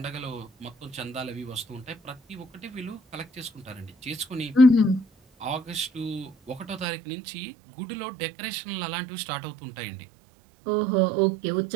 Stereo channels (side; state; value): left; drops out; at 6.9 s